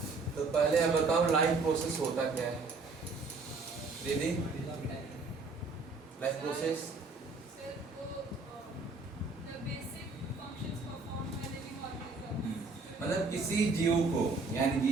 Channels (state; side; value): quieter; left; 3.9 dB